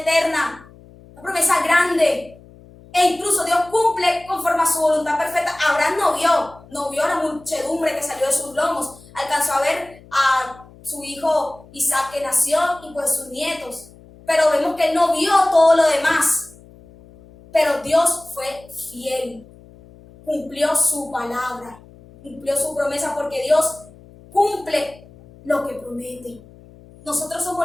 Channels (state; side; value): noise; left; hum, 23 dB below the sound